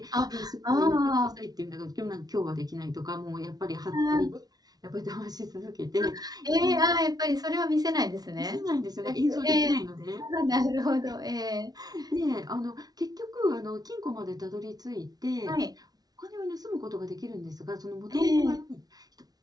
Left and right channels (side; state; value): left; late; 0.19 ms